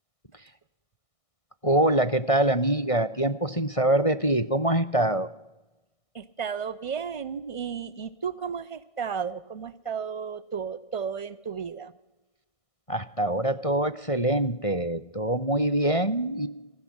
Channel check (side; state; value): right; late; 1.6 ms